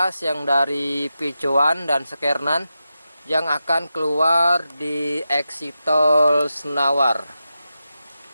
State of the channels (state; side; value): inverted; both; correlation -0.90